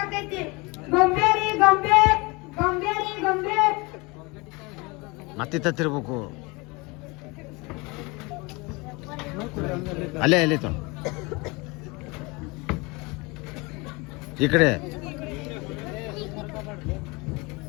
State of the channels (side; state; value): right; quieter; 26.1 dB